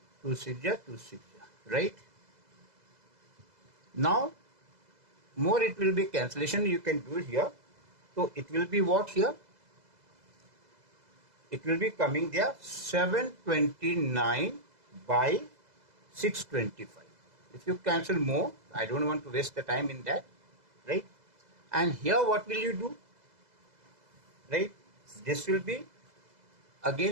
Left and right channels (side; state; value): left; late; 2.0 ms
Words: 2 6 the 2 6 the, right? Now, more it will be cancellation, you can do it here. So it will be what here? It will be coming there 729 by 625. If you cancel more, I don't want to waste the time in that, right? And here what will you do? Right? This will be